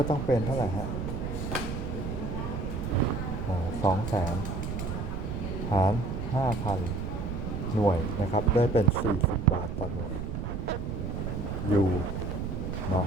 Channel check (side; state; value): right; noise; rumble, 4 dB below the sound